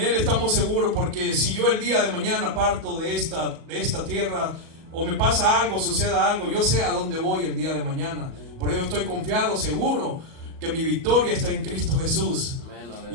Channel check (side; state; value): left; late; 37 ms